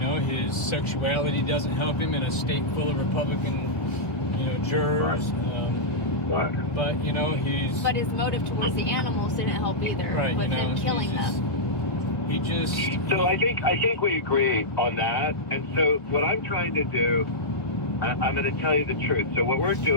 his sexuality doesn't help him in a state full of Republican, jurors. Right. But But his motive towards the animals didn't help either. Right. With him killing them. So I think we agree on that. And so what I'm trying to do, I'm going to tell you the truth. So what we're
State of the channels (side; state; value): right; late; 1.3 ms